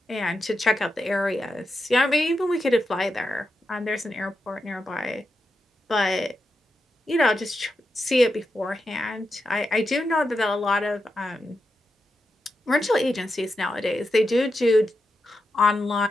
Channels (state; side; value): normal; both; correlation 0.87